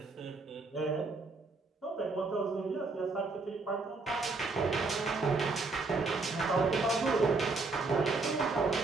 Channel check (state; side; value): quieter; left; 3.8 dB